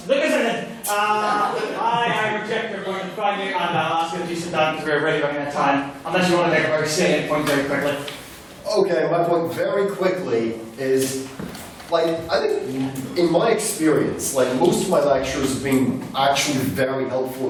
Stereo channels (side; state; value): both; identical; correlation 1.00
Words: Look at it. I reject your point of find you, and I'll ask you if you sit down because we're really running out of time. Unless you want to make a very salient point very quickly. Okay, my point very quickly is, like, I think in my experience, like, most of my lectures have been actually very helpful